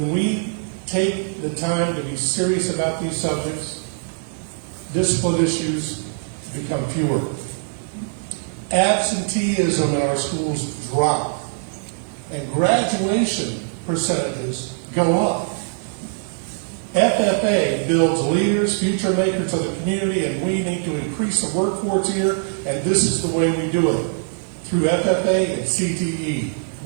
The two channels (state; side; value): silent; left; 61 dB below the other